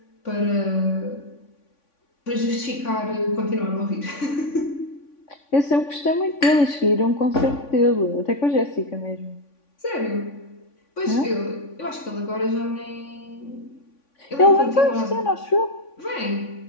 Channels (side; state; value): right; late; 3.5 ms